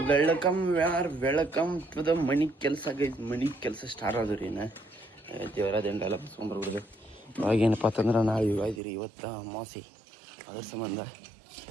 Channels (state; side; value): drops out; left; at 8.8 s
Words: welcome to the money ಕೆಲಸ ಗೈಸ್. ಮನಿ ಕೆಲಸ ಸ್ಟಾರ್ಟ್ ಆದ್ರಿ ಇನ್ನು ದೇವರ ದಂಡೆಲ್ಲ ಬಸ್ಕೊಂಡ್ಬರ್ಬಿಡ್ದು. ಇವಾಗೇನಪ್ಪ ಅಂತಂದ್ರೆ ನಾವು ಇವಾಗಿರಿ ಇವತ್ತು ಅಮಾವಾಸ್ಯೆ, ಅದ್ರ ಸಂಬಂಧ